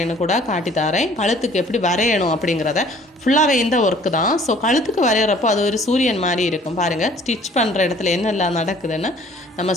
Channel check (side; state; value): both; normal; correlation 0.54